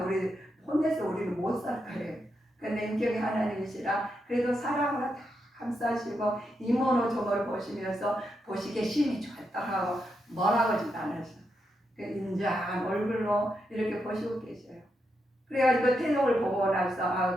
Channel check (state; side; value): normal; both; correlation 0.83